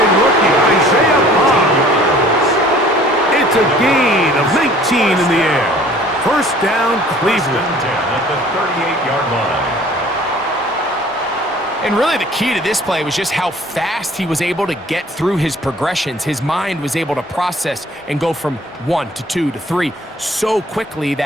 rookie, Isaiah Bond. It's a gain of 19 in the air. First down, Cleveland. First and 10 at the 38-yard line. And really the key to this play was just how fast he was able to get through his progressions. His mind was able to process and go from 1 to 2 to 3 so quickly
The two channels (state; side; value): normal; both; correlation 0.52